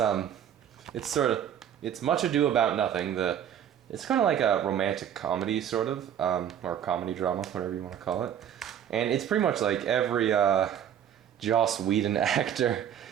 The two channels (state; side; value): quieter; left; 9.6 dB